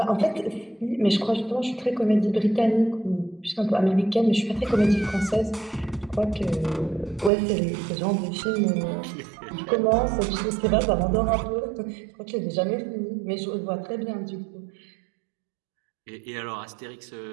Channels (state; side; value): drops out; left; at 7.3 s